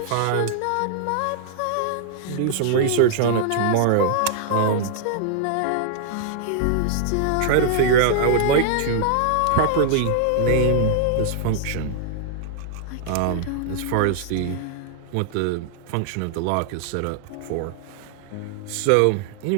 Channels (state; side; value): different; both; correlation -0.01